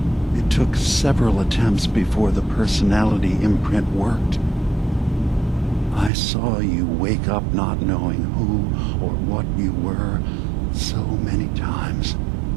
It took several attempts before the personality imprint worked. I saw you wake up not knowing who or what you were so many times.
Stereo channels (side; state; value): left; drops out; at 6.1 s